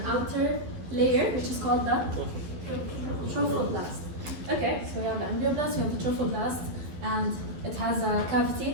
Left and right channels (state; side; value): late; left; 12 ms